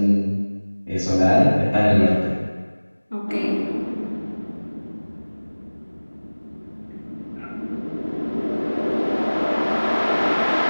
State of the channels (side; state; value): both; inverted; correlation -1.00